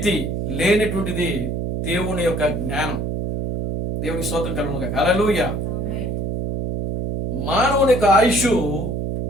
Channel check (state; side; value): noise; right; hum, 2 dB below the sound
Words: లేనటువంటిది. దేవుని యొక్క జ్ఞానం. దేవుని స్తోత్రం కలుగునుగా. హల్లెలూయా. మానవుని యొక్క ఆయుష్